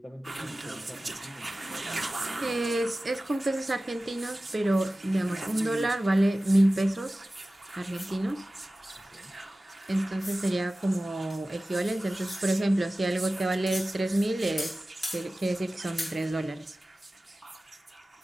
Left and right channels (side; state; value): both; normal; correlation 0.96